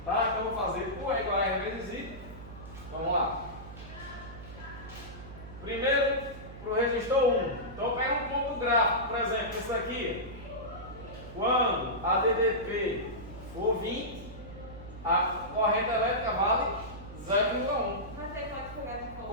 Tá? Então eu vou fazer U é igual a R vezes I. Vamos lá. Primeiro, para o resistor 1. Então eu pego um ponto gráfico, por exemplo, isso aqui. Quando a DDP for 20, a corrente elétrica vale 0,1. Mas aí pode pegar de volta.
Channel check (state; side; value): noise; right; hum, 14 dB below the sound